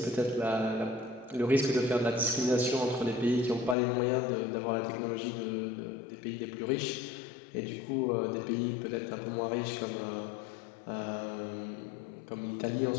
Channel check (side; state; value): right; drops out; at 3.8 s